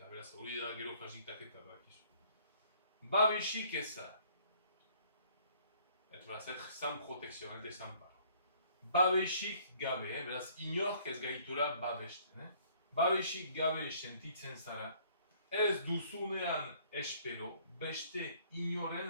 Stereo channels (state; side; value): inverted; both; correlation -0.59